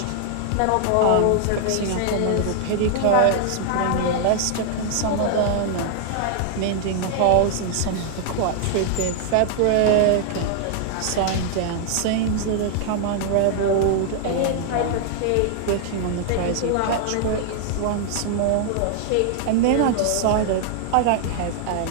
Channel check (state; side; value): different; both; correlation 0.00